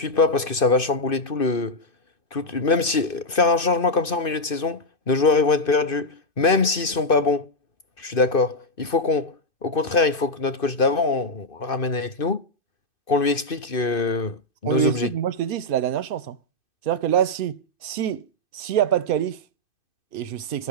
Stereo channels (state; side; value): late; right; 2.6 ms